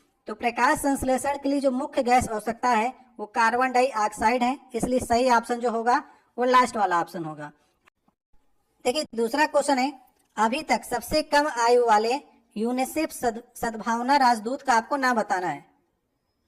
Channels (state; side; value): identical; both; correlation 1.00